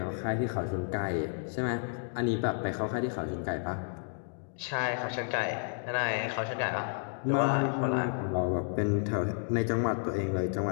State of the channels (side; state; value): right; silent; digital silence